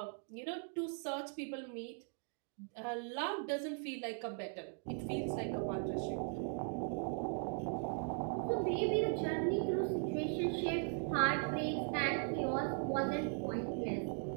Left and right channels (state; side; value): silent; left; 52 dB below the other